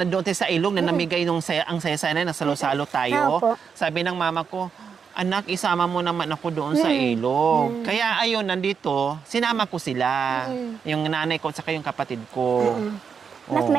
doon tayo sa ilog na namigay nung ang saya-saya na salo-salo tayo. Opo. Sabi ng mama ko, anak, isama mo naman ako doon sa ilog. Kaya ayun, nandito, sinama ko sila. Yung nanay ko at saka yung kapatid ko. Mas Oo.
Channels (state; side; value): quieter; left; 6.4 dB